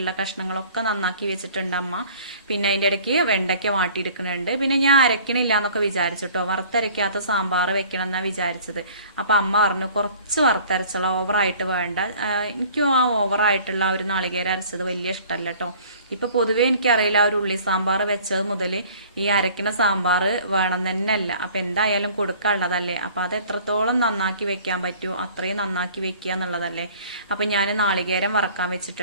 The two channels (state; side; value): inverted; both; correlation -0.50